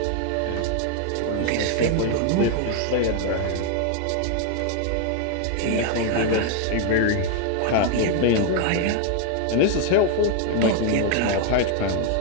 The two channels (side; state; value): both; different; correlation 0.01